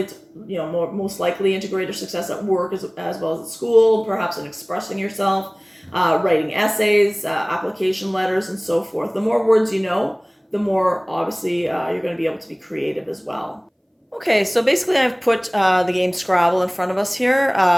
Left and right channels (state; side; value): identical; both; correlation 1.00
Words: most likely into greater success at work as well as at school, perhaps in expressing yourself, writing essays, application letters, and so forth. The more words you know, the more, obviously, you're going to be able to be creative as well. Okay, so basically I've put the game Scrabble in front of us here.